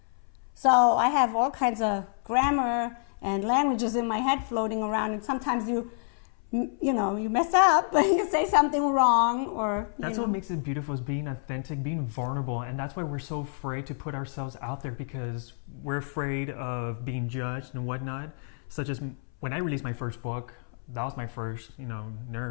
So I have all kinds of grammar and languages in my head floating around, and sometimes you you know, you mess up, you say something wrong, or that's what makes it beautiful, is being authentic, being vulnerable, and that's why we're so afraid to put ourselves out there, because we're afraid of being judged and whatnot. Such as when I released my first book, that was my first,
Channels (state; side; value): silent; right; 59 dB below the other